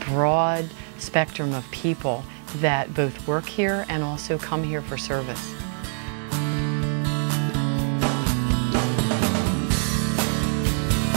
broad spectrum of people that both work here and also come here for service.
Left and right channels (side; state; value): left; silent; 61 dB below the other